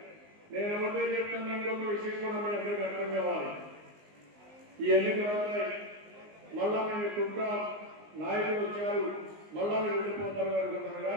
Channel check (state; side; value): late; left; 19 ms